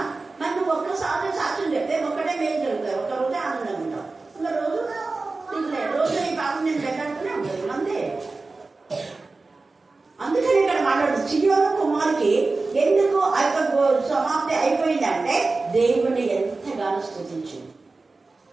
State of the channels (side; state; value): left; quieter; 3.6 dB